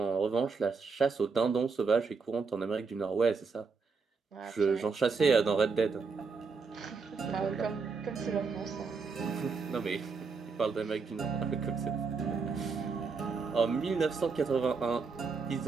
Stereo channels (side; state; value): left; quieter; 4.9 dB